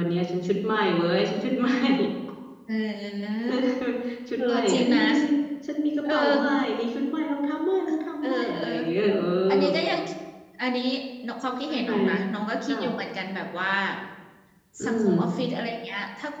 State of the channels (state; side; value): identical; both; correlation 1.00